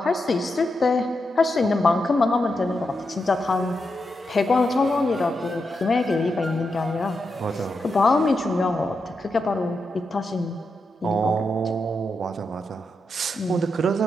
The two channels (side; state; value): both; normal; correlation 0.86